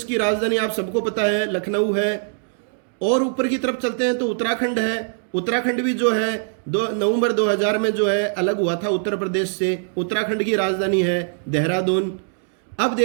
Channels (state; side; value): silent; left; 64 dB below the other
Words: की राजधानी आप सबको पता है लखनऊ है। और ऊपर की तरफ चलते हैं तो उत्तराखंड है। उत्तराखंड भी जो है 2 नवंबर 2000 में जो है अलग हुआ था उत्तर प्रदेश से। उत्तराखंड की राजधानी है देहरादून। अब